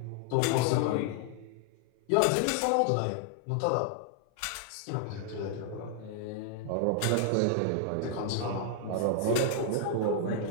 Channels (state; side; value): different; both; correlation 0.00